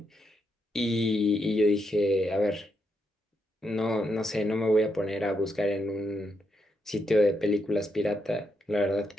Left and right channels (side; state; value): both; normal; correlation 0.80